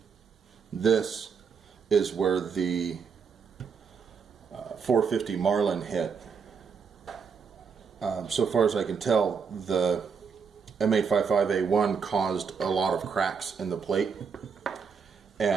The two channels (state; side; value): quieter; left; 6.0 dB